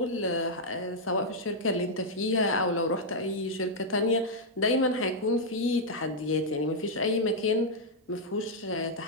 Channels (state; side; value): normal; both; correlation -0.05